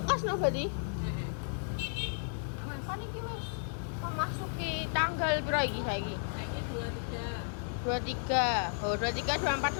kelas no berarti? Heeh. Awas. Kan iki wis memasuki tanggal piro iki saiki? Saiki 23. 23. Oh, 23, 24,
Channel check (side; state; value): right; silent; digital silence